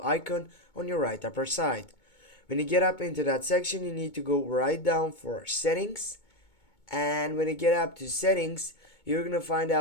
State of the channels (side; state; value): right; late; 2.2 ms